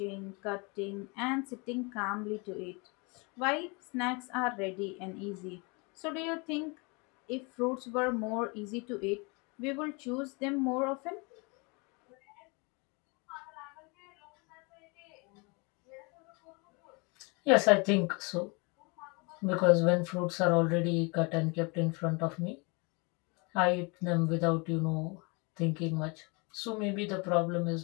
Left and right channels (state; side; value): quieter; right; 30.1 dB